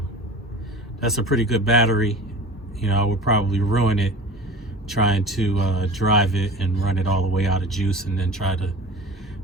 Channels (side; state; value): both; normal; correlation 0.37